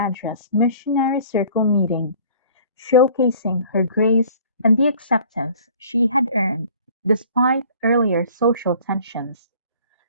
missionary circle meeting, showcasing her grace and the acceptance she had earned despite earlier social tensions.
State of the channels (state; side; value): inverted; both; correlation -0.51